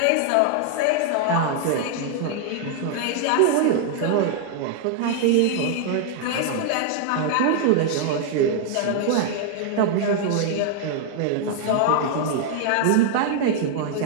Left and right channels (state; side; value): different; both; correlation -0.01